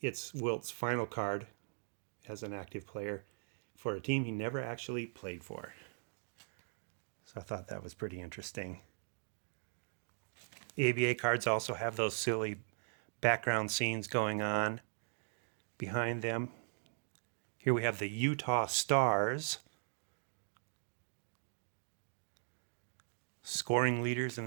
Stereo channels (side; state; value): left; silent; digital silence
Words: It's Wilt's final card as an active player for a team he never actually played for. So I thought that was pretty interesting. ABA cards also have those silly background scenes going on behind them. Here we have the Utah Stars. Scoring leaders in